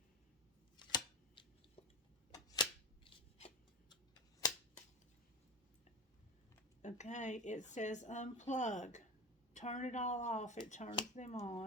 Okay, it says unplug. Turn it all off. It turns them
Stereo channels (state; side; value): normal; both; correlation 0.25